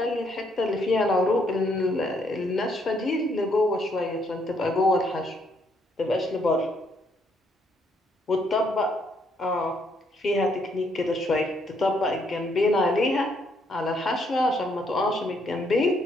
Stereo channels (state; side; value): normal; both; correlation 0.71